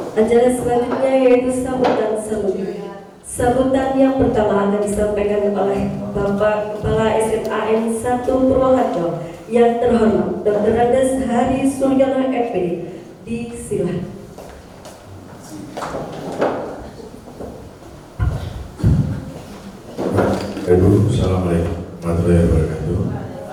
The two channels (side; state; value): both; identical; correlation 1.00